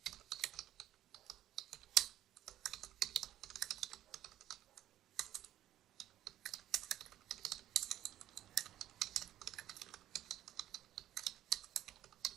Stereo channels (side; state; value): left; quieter; 12.8 dB